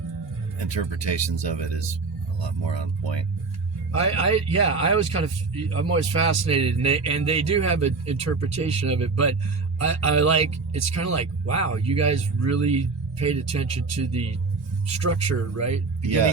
interpretations of it is a lot more on point. I'm always fascinated, and they do have an interpretation of it, but I like, it's kind of like, wow, you guys really paid attention to the structure, right?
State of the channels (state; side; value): quieter; left; 4.2 dB